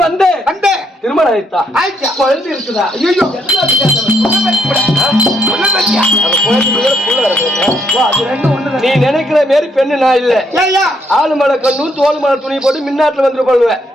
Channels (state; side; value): normal; both; correlation 0.73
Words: வந்த திருமணம் ஆயிட்டா? குழந்தை இருக்குதா? நீ நினைக்கிற மாரி பெண்ணு நான் இல்ல. ஆளு மலை கண்ணும் தோல் மலை துணி போட்டு மின்னாட்டுல வந்துட்டு போடுவேன்.